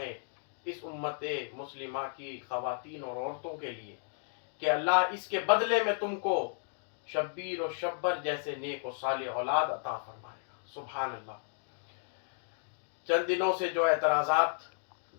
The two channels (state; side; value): silent; right; 55 dB below the other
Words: اس امت مسلمہ کی خواتین اور عورتوں کے لیے، کہ اللہ اس کے بدلے میں تم کو شبیر و شبر جیسے نیک و صالح اولاد عطا فرمائے گا۔ سبحان اللہ۔ چند دنوں سے جو اعتراضات